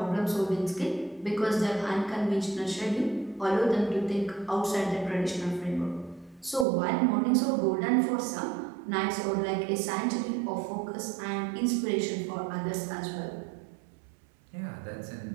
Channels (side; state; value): left; drops out; at 6.7 s